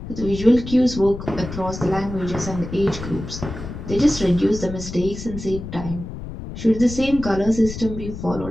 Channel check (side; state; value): left; noise; rumble, 9 dB below the sound